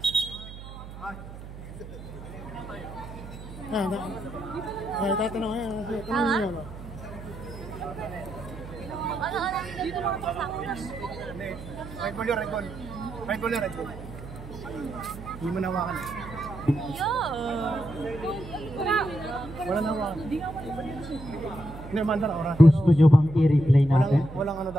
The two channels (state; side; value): noise; right; hum, 13 dB below the sound